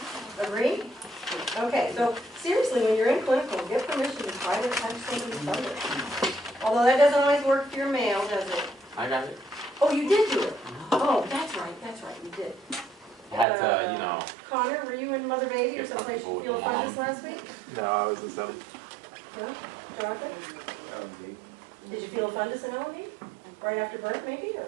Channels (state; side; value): drops out; left; at 13.5 s